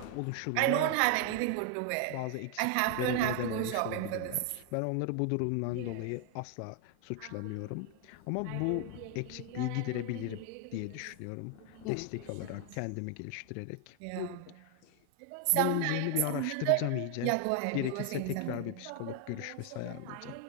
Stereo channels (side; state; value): both; different; correlation 0.00